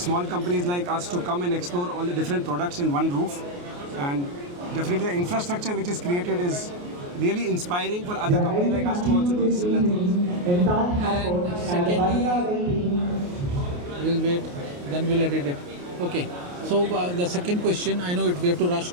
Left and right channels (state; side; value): late; left; 28 ms